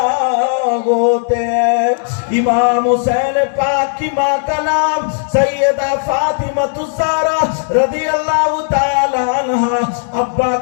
ہوتے ہیں. امام حسین پاک کی ماں کا نام سیدہ فاطمہ الزہرا رضی اللہ تعالی عنہ، ابا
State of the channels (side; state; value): right; silent; digital silence